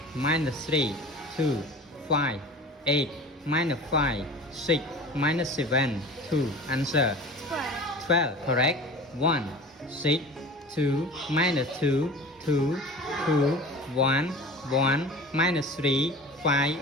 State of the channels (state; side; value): normal; both; correlation 0.38